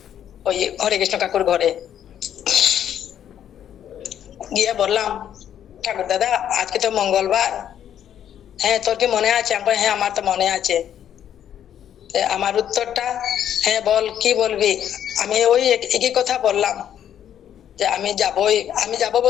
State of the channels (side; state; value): right; quieter; 10.0 dB